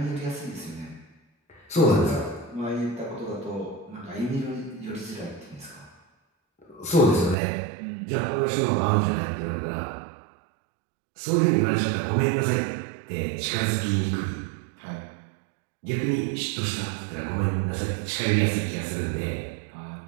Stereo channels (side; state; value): left; drops out; at 7.4 s